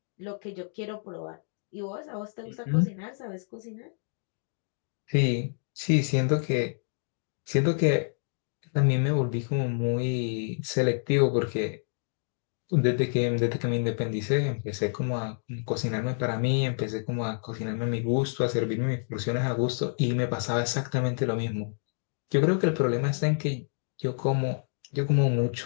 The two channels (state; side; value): silent; right; digital silence